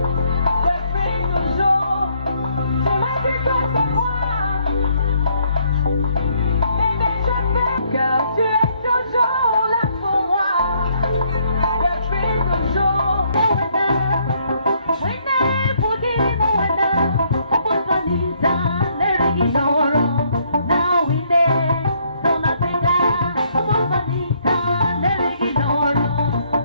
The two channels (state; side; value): inverted; both; correlation -0.68